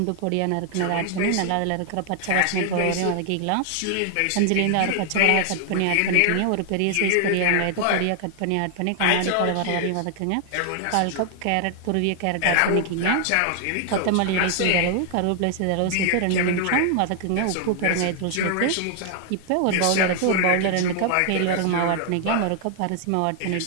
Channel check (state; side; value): different; both; correlation 0.00